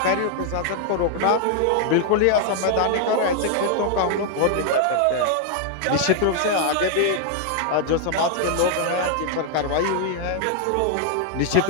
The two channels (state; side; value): different; both; correlation 0.00